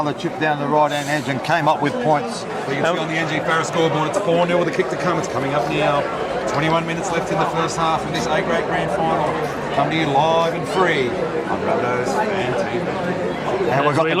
chip down the right-hand edge and came up with points. So you can see on the NG Farah scoreboard, it's 4-0 with a kick to come. It's coming up now. 21 minutes left in the first half of this A-grade grand final. Come to you live and free on Rabbitohs Fan TV. And we've got the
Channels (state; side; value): identical; both; correlation 1.00